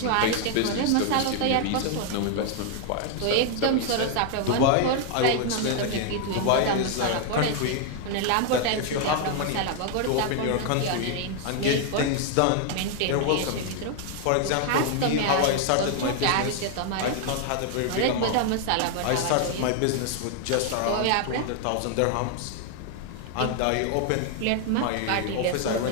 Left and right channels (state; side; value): different; both; correlation 0.00